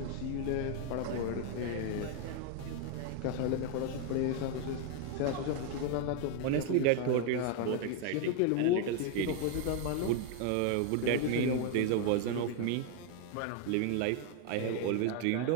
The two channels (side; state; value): both; different; correlation 0.01